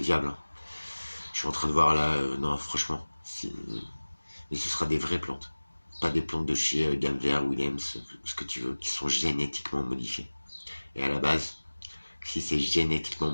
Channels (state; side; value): inverted; both; correlation -1.00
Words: Hein. Je suis en train de voir là, non, franchement. Et ce sera des vraies plantes. Pas des plantes de chez Ganver, Williams, ce que tu veux, qui sont génétiquement modifiées. Et à la base, si c'est génétiquement